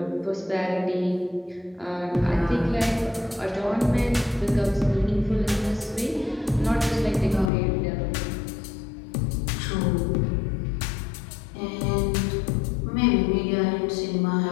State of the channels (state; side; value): drops out; right; at 7.5 s